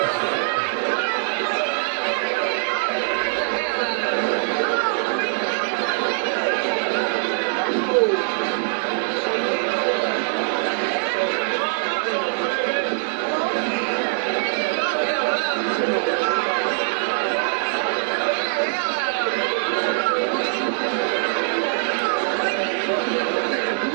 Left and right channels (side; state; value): left; silent; digital silence